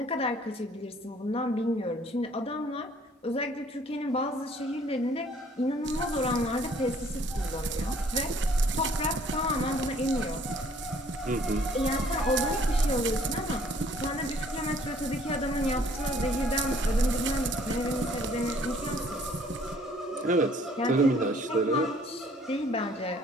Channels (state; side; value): normal; both; correlation 0.58